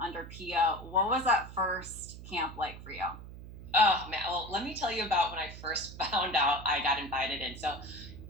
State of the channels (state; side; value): noise; right; hum, 13 dB below the sound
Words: Pia. What was that first camp like for you? Oh man, well, let me tell you about when I first found out I got invited in. So